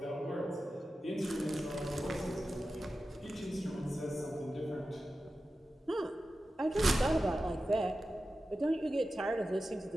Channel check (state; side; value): normal; both; correlation 0.93